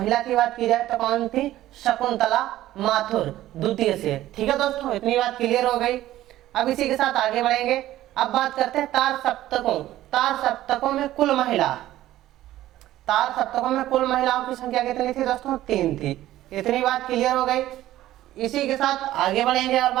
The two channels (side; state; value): left; quieter; 14.4 dB